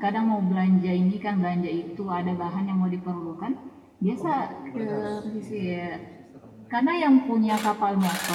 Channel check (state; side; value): identical; both; correlation 1.00